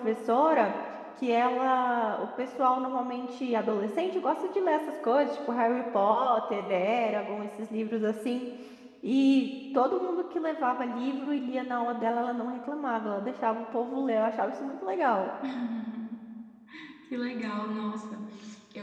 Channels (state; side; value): identical; both; correlation 1.00